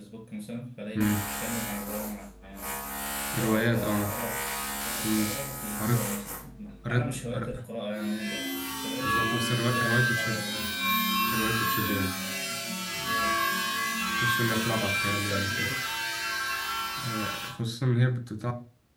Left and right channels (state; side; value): identical; both; correlation 1.00